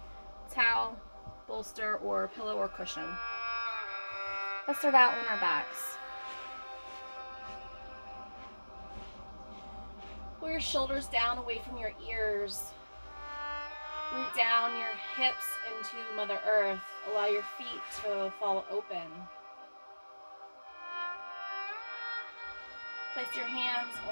towel, bolster, or pillow or cushion. Let's start out on our backs. Pull your shoulders down away from your ears. Root down your hips into Mother Earth. Allow your feet to fall open. Place your hands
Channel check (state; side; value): inverted; both; correlation -1.00